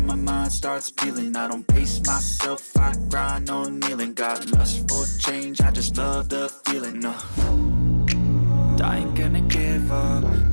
my mind starts peeling. I don't pace myself, I grind on kneeling. Got lust for change, I just love the feeling. I ain't gonna give up.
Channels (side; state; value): both; inverted; correlation -1.00